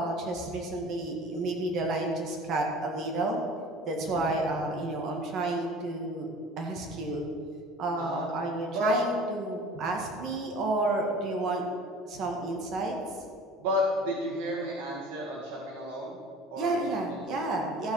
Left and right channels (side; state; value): both; normal; correlation 0.44